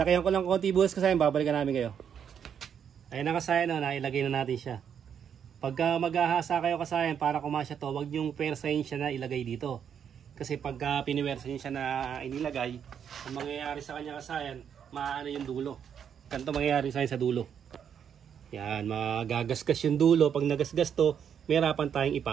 ko lang konti bukas kasayan, babalikan namin kayo. Ayun na kasayan, no, nailagay na natin siya. Pagka maghahasa kayo kasayan para kumasya to, wag yung persahin siya na ilagay dito. Kasi pagka piniwersahin siya na inilagay, ang mangyayari sa kanya kasayan, maano yung dulo. Ganito mangyayari sa dulo. Yan, magagasgas yung dulo. Pag nagasgas to, may harapan tayong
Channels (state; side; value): quieter; left; 8.1 dB